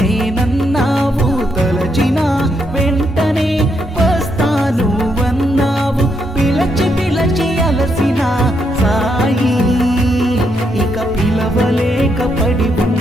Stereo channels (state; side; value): normal; both; correlation 0.78